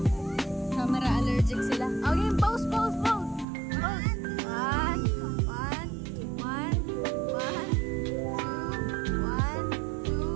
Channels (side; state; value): left; drops out; at 3.5 s